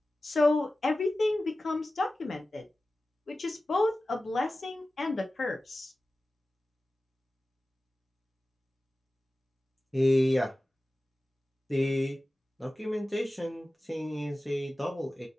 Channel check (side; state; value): both; normal; correlation 0.96